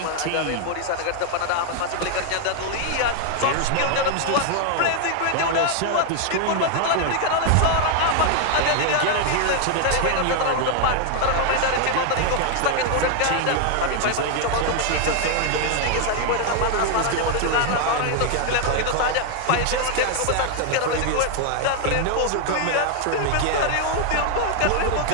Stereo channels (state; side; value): different; both; correlation 0.00